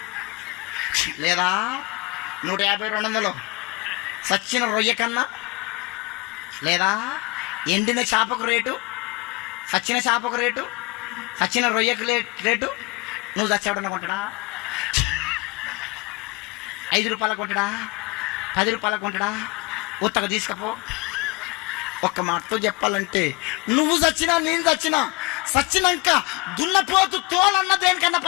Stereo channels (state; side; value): quieter; right; 25.2 dB